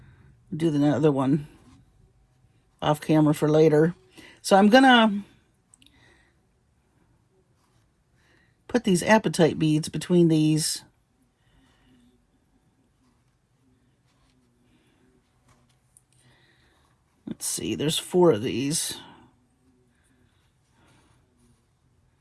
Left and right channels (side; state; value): both; identical; correlation 1.00